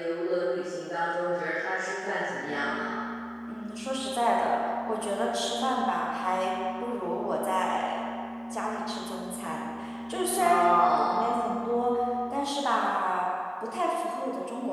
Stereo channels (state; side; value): identical; both; correlation 1.00